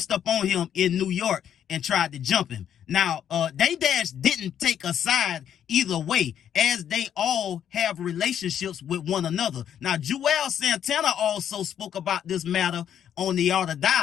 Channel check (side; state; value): right; quieter; 9.5 dB